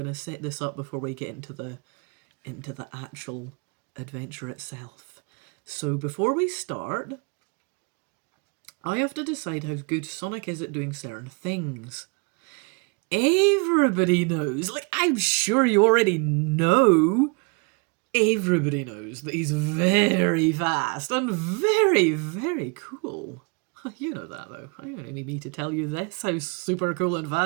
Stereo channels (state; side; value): quieter; left; 31.8 dB